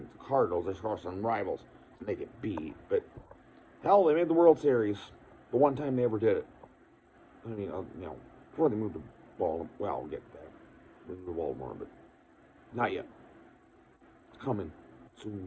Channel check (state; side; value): identical; both; correlation 1.00